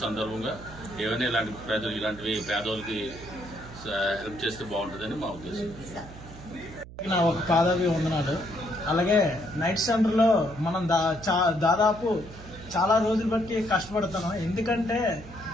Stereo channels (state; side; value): noise; right; hum, 16 dB below the sound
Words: సందర్భంగా ఏమైనా ఇలాంటి ప్రజలు, ఇలాంటివి పేదవాళ్ళకి హెల్ప్ చేస్తే బాగుంటుందని మా ఉద్దేశం. నా ఒక పాదాభి వందనాలు. అలాగే నైట్ సెంటర్లో మనం దాదాపు చాలా రోజులు బట్టి కష్టపడుతున్నాం. ఎందుకంటే